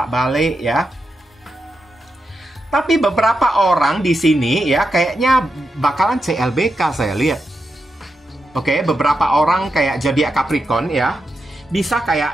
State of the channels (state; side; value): normal; both; correlation 0.87